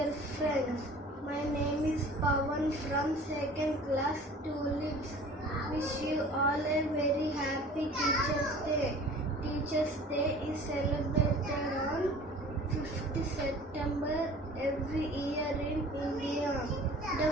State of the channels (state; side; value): normal; both; correlation 0.45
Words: friends. My name is Pawan from 2nd class Tulips. Wish you all a very happy Teachers' Day. Teachers' Day is celebrated on 5th September every year in India. The